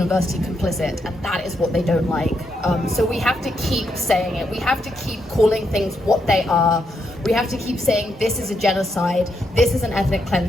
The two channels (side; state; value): both; normal; correlation 0.80